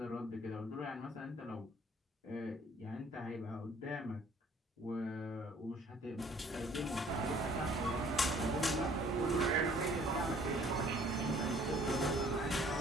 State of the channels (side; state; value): both; normal; correlation 0.56